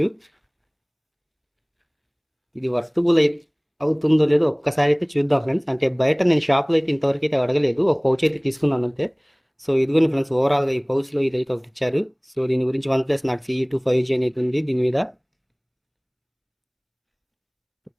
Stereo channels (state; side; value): identical; both; correlation 1.00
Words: ఇది వర్తబుల్ అవుతుందో లేదో ఒక్కసారి అయితే చూద్దాం ఫ్రెండ్స్. అంటే బయట నేను షాప్లో అయితే ఇంతవరకు అయితే అడగలేదు, ఒక పౌచ్ అయితే తీసుకున్నాను అంతే. సో ఇదిగోని ఫ్రెండ్స్, ఓవరాల్గా ఈ పౌచ్లో ఇదైతే ఒకటి ఇచ్చారు. సో దీని గురించి one plus not CE2 5G అనేది ఉంది దీని మీద.